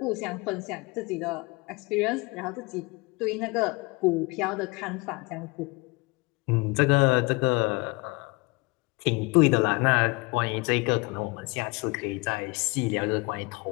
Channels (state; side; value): quieter; right; 25.7 dB